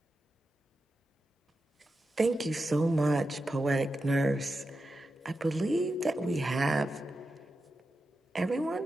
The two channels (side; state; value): both; normal; correlation 0.90